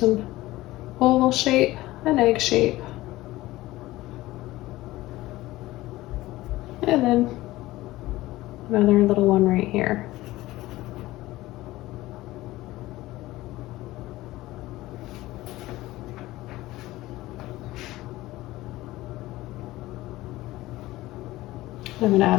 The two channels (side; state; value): right; quieter; 17.6 dB